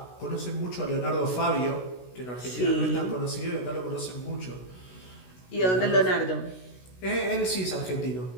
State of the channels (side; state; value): right; late; 16 ms